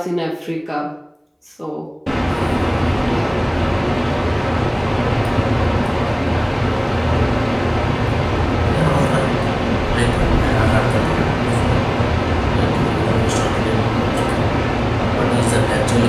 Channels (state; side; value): identical; both; correlation 1.00